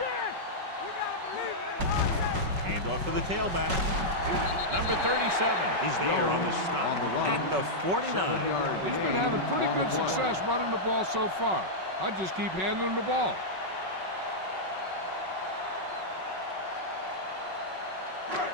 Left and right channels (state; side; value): late; left; 5.4 ms